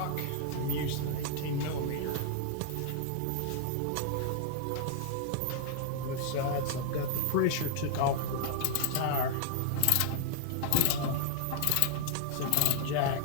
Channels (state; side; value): different; both; correlation -0.01